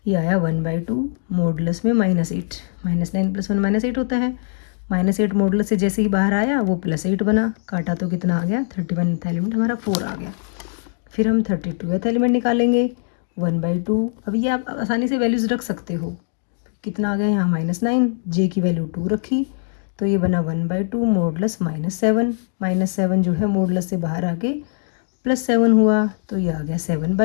ये आया 1/2 मॉडुलस में -8। -9 + 1 -8 होता है। -8 मॉडुलस से जैसे ही बाहर आया वो +8 बना, काटा तो कितना आ गया? 31th एलिमेंट हमारा 4 आ गया। फिर हम 32th एलिमेंट निकालेंगे। 1/2, अब ये आप आसानी से वैल्यूज़ रख सकते हो। कितना आ गया यहाँ? -9, जे की वैल्यू 2 रखी तो ये बना 1/2 मॉडुलस -7। -7 जो है मॉडुलस से बाहर आके +7 हुआ तो ये आ गया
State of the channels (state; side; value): silent; right; digital silence